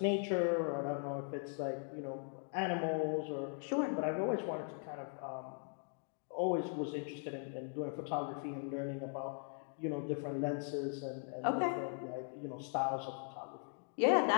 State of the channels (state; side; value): silent; right; 52 dB below the other